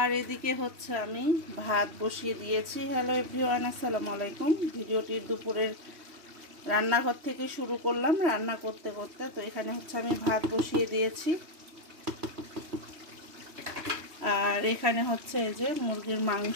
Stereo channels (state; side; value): late; left; 3.1 ms